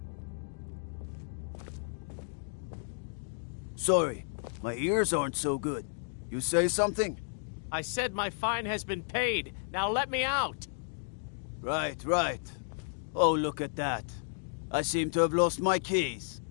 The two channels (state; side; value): silent; right; digital silence